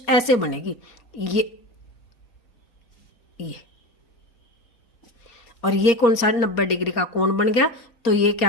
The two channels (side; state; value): right; late; 4.2 ms